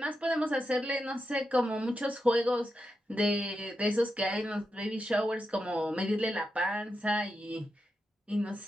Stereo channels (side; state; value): both; normal; correlation 0.87